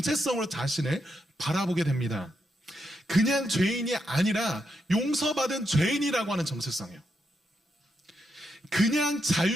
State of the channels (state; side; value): normal; both; correlation 0.82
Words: 자신을 바라보게 됩니다. 그냥 죄인이 아니라 용서받은 죄인이라고 하는 정체성이에요. 그냥